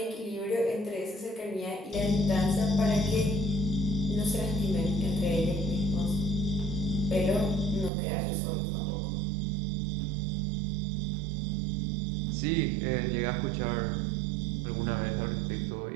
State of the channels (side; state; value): left; drops out; at 7.9 s